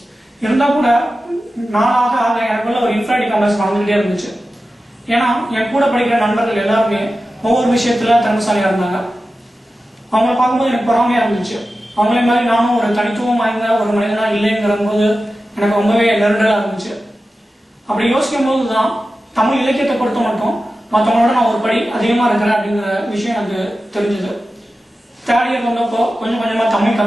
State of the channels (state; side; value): normal; both; correlation 0.93